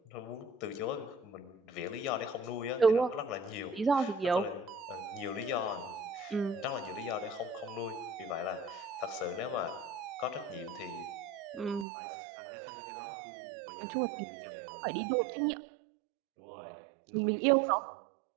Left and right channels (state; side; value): drops out; left; at 11.9 s